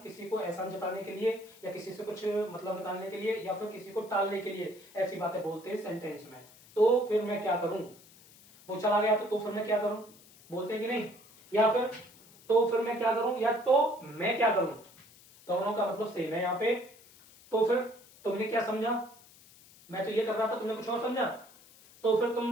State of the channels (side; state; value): left; noise; hiss, 24 dB below the sound